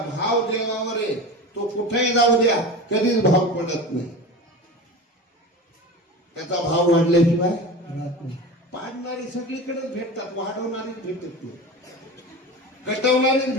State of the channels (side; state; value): both; normal; correlation 0.30